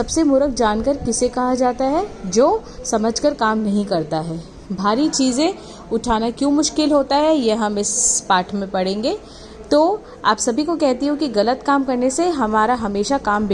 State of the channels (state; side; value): identical; both; correlation 1.00